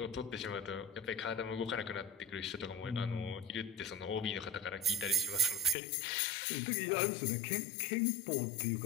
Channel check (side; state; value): right; drops out; at 5.8 s